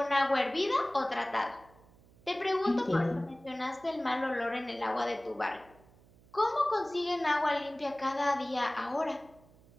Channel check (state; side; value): noise; right; hum, 27 dB below the sound